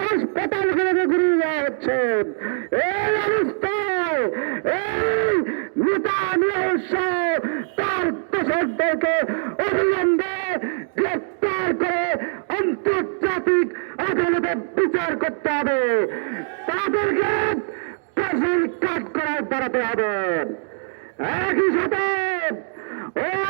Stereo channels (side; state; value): left; silent; digital silence